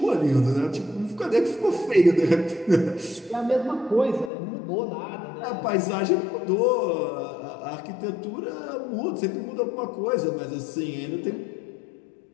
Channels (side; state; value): right; drops out; at 4.3 s